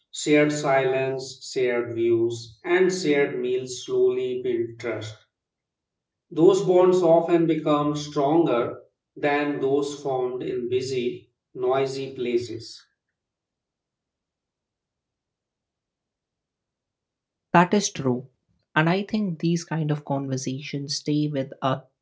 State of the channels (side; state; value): both; identical; correlation 1.00